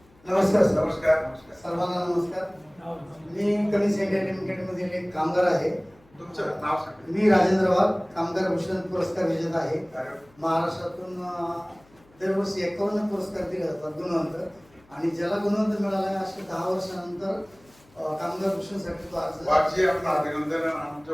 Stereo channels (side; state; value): left; noise; hum, 30 dB below the sound